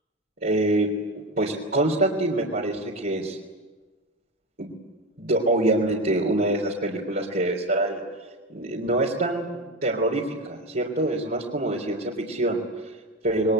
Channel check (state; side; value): normal; both; correlation 0.20